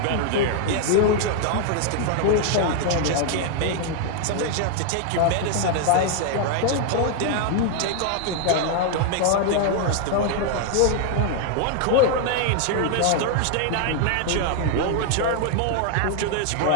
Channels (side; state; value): both; different; correlation 0.00